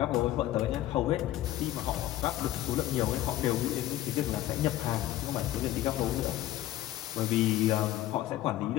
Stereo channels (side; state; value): right; quieter; 14.2 dB